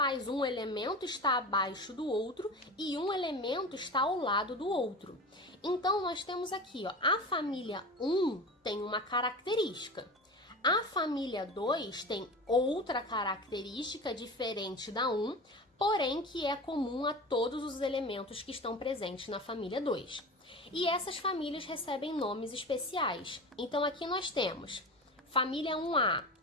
um elemento estar abaixo do outro e um elemento estar ao lado do outro. Então, nós temos aqui, ó, a família 1 tem uma característica. A família 2 tem outra característica diferente da 1, porém que é comum a todos os elementos que estão presentes na família 2. E essas famílias recebem nomes especiais. Então aqui nós temos família 1A,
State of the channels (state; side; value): normal; both; correlation 0.31